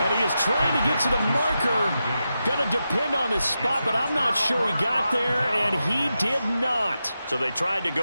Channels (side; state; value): both; inverted; correlation -0.89